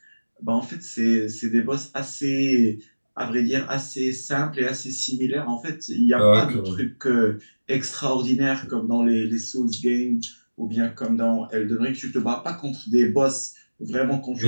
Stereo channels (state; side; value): inverted; both; correlation -1.00